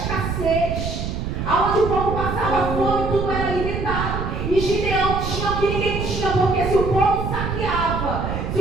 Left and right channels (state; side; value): noise; right; rumble, 4 dB below the sound